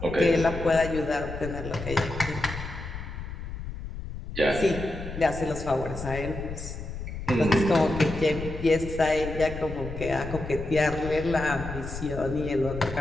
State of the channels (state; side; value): noise; left; rumble, 9 dB below the sound